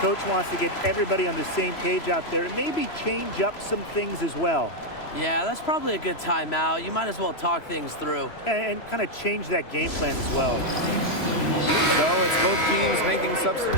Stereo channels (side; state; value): right; late; 3.0 ms